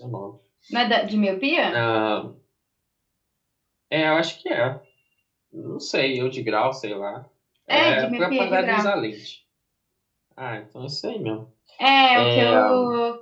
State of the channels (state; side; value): identical; both; correlation 1.00